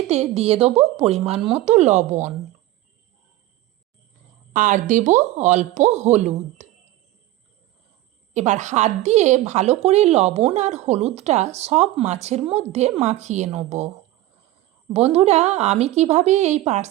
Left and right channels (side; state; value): left; quieter; 15.9 dB